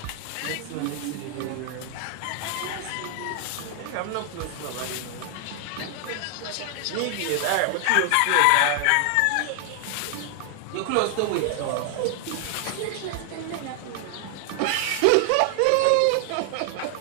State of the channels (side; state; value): both; different; correlation 0.00